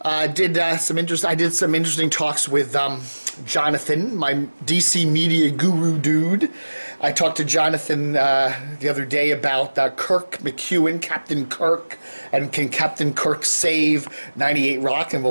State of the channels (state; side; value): inverted; both; correlation -1.00